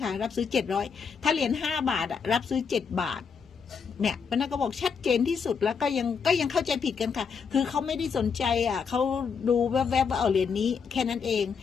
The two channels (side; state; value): right; quieter; 6.1 dB